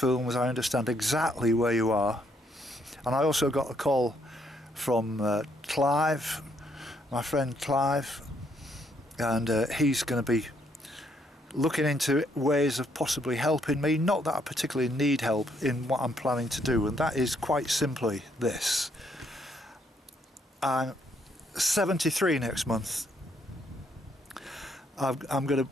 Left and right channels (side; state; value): both; normal; correlation 0.71